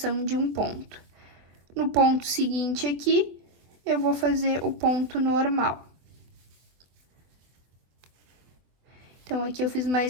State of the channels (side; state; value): left; late; 24 ms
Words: de um ponto. No ponto seguinte aqui, eu vou fazer o ponto normal. Então, aqui eu fiz